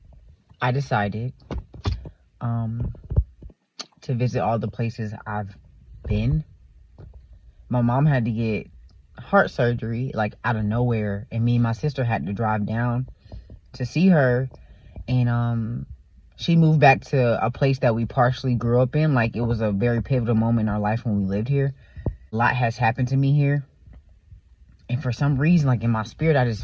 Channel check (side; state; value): both; identical; correlation 1.00